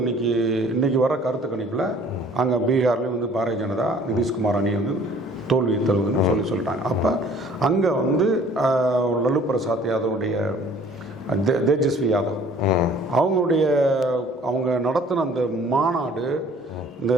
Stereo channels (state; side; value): normal; both; correlation 0.53